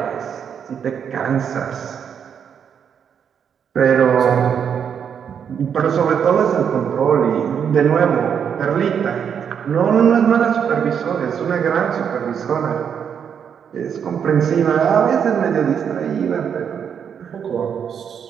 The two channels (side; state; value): left; quieter; 7.7 dB